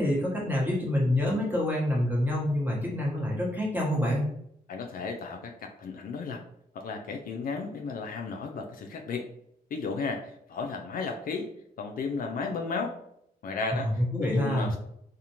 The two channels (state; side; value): normal; both; correlation 0.72